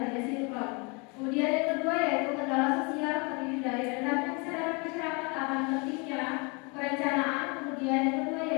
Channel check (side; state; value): right; quieter; 31.1 dB